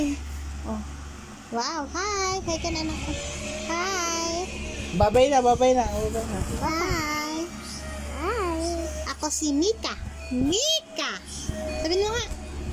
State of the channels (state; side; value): identical; both; correlation 1.00